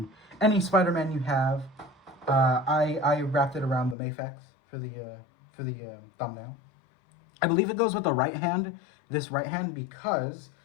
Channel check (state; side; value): drops out; right; at 4.0 s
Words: any Spider-Man you have. I wrapped it around the Mafex for the thumbnail. I believe it goes with the right hand, this right hand, because